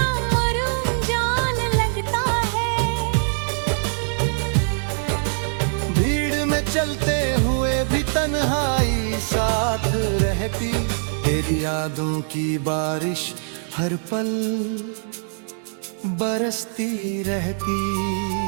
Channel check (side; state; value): left; silent; digital silence